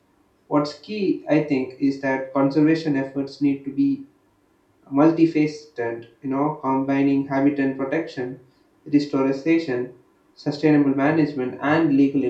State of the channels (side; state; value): both; identical; correlation 1.00